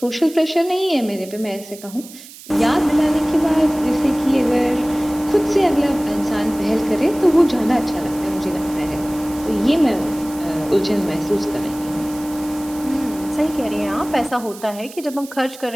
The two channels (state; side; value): noise; right; hiss, 18 dB below the sound